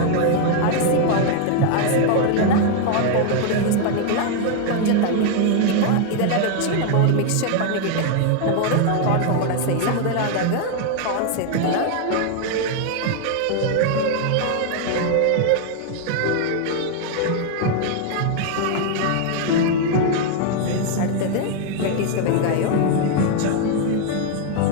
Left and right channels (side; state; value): both; different; correlation 0.00